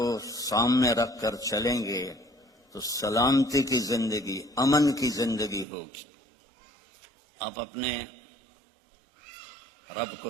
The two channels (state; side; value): drops out; left; at 5.7 s